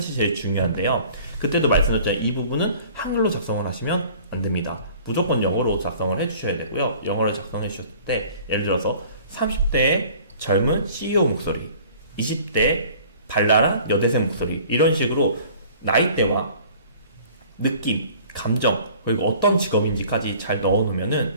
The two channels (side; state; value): both; inverted; correlation -0.49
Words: 제일 중요한데요. 그때도 말씀드렸잖아요. 이 부분은 한글로 작성을 하시면 안 됩니다. 무조건 영어로 작성을 해주셔야 되고요. 영어를 작성해 주셨을 때 예를 들어서 30대의 젊은 CEO 목소리, 20대 발랄한 여대생 목소리, 이런 식으로 나이대와 느낌, 감정, 그리고 어떤 직업인지까지 잘